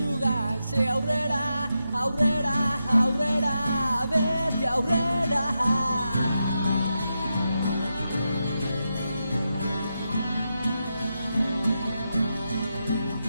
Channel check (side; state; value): both; inverted; correlation -0.87